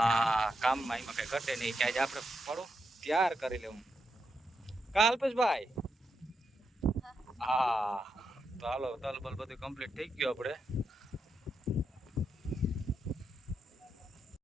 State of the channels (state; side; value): normal; both; correlation 0.84